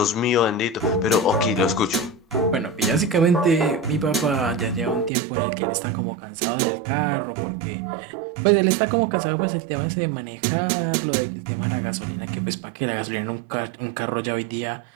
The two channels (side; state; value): left; drops out; at 5.1 s